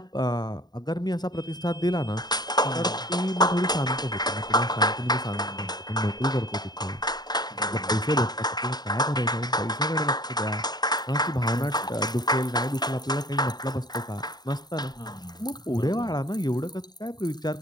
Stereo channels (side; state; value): right; late; 0.20 ms